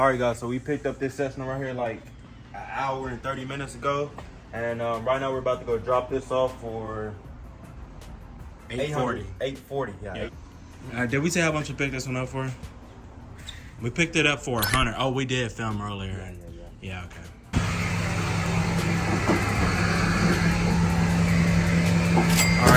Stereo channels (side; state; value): both; identical; correlation 1.00